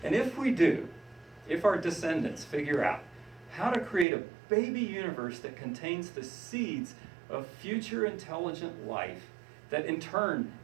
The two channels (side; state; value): left; drops out; at 4.0 s